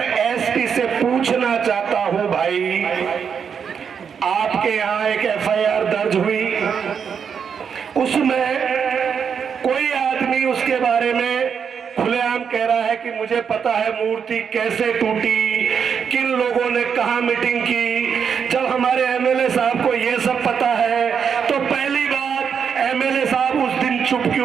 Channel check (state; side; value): quieter; left; 6.9 dB